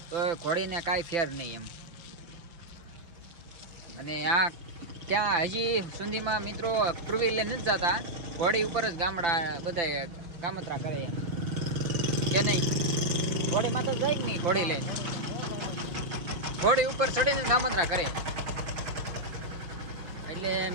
તો ઘોડીને કાંઈ ફેર નહીં એમ. અને આ ક્યાં હજી સુધીમાં મિત્રો ટુ વ્હીલર નથી જતા. ઘોડી ઉપર જ ગામડા બધા કામતરા કરે એમ કે નહીં? ઘોડીમાં તો જાય જ નહીં. ઘોડી લઈને ઘોડી ઉપર ચડીને કામતરા કરે. એટલે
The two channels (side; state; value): left; late; 5.8 ms